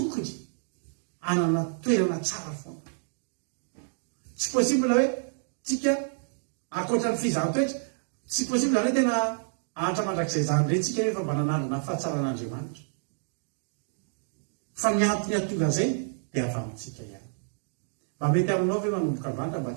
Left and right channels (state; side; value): silent; left; digital silence